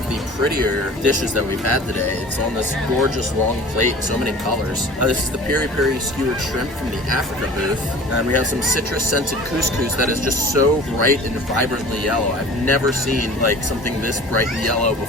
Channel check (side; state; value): both; normal; correlation 0.42